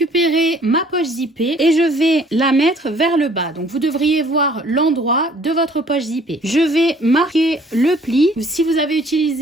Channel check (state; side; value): normal; both; correlation 0.57